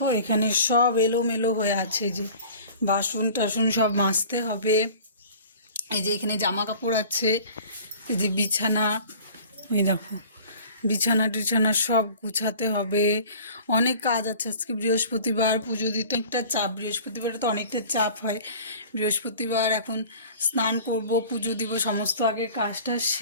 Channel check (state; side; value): inverted; both; correlation -0.45